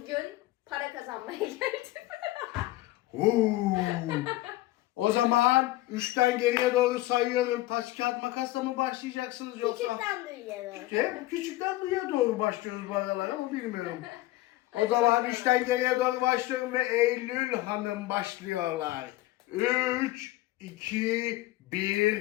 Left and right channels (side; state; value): right; quieter; 17.3 dB